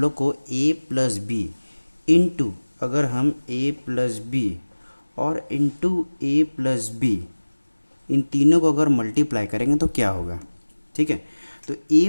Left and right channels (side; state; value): both; inverted; correlation -1.00